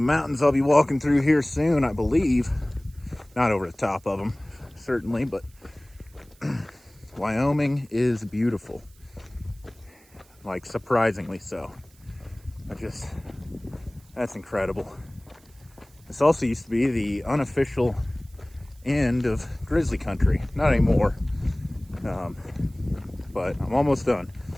I'll be walking through here soon, I believe. Not over the top of them, certainly, but Wyoming is beautiful. Like, surprisingly so. That's incredible. This also used to be the unofficial end of grizzly country. Not anymore. But I'm almost done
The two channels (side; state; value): right; noise; hiss, 29 dB below the sound